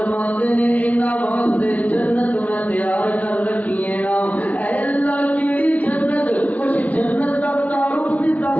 ہیں انہاں واسطے جنت میں تیار کر رکھی ہے نا. اے اللہ کیڑی جنت, کچھ جنت کا تعارف بھی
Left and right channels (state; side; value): late; right; 0.071 ms